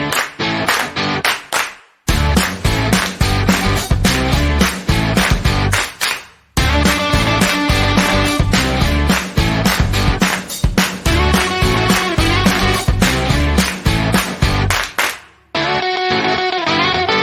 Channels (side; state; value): both; identical; correlation 1.00